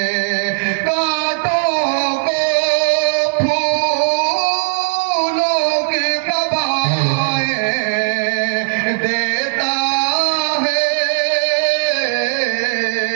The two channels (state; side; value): silent; left; digital silence